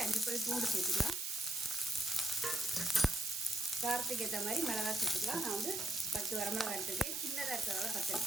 5 பல் பூண்டு சேர்த்துக்கலாம். காரத்துக்கு ஏற்ற மாதிரி மிளகாய் சேர்த்துக்கலாம். நான் 10 வரமிளகாய் எடுத்துருக்கேன். சின்னதாக இருக்கிறதால 10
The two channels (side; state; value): right; noise; hiss, 3 dB below the sound